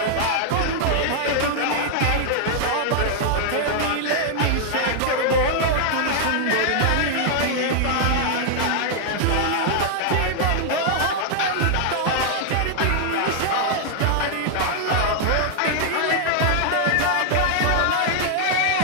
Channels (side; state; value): both; different; correlation -0.01